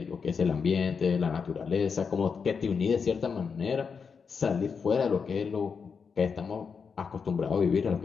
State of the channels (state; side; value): quieter; right; 5.8 dB